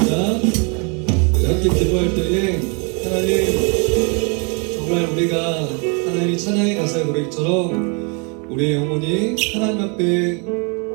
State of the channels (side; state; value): left; quieter; 34.8 dB